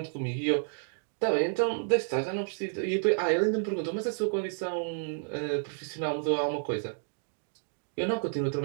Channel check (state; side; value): silent; left; digital silence